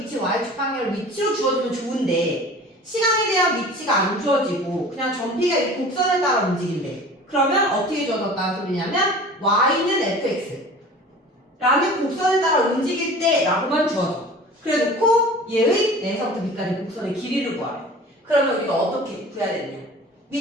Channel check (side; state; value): both; normal; correlation 0.42